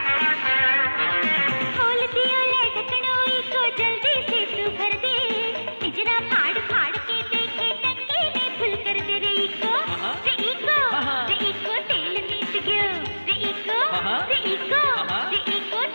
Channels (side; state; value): both; inverted; correlation -1.00